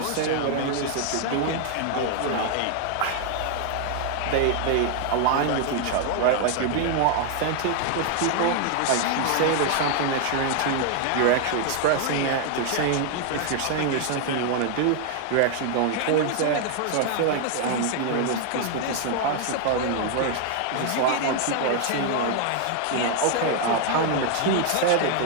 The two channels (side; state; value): both; different; correlation 0.00